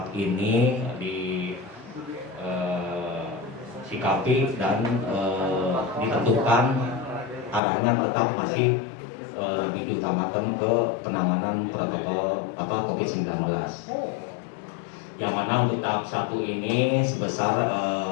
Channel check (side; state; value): right; drops out; at 7.6 s